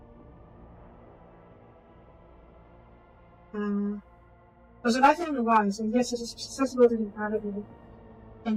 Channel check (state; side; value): identical; both; correlation 1.00